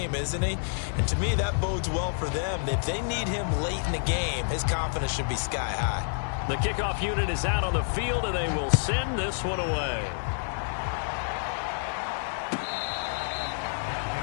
isn't he? And to me, that bodes well for them. If they need him late in the game, his confidence should be sky high. The kickoff unit is out on the field, and they will send this one away.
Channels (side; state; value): right; silent; 59 dB below the other